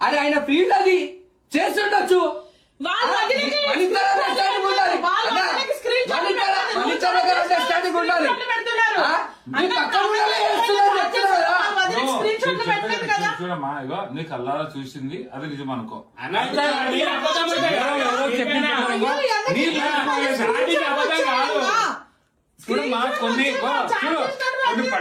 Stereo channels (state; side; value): identical; both; correlation 1.00